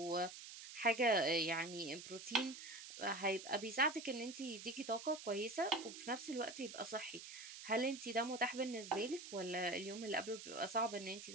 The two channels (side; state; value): right; noise; hiss, 11 dB below the sound